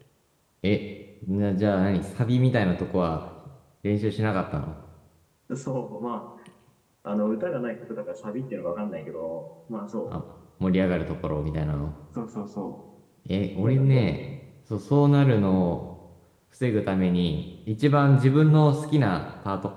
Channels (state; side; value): identical; both; correlation 1.00